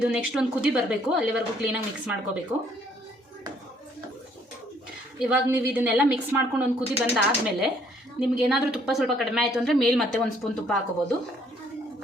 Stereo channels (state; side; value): normal; both; correlation 0.64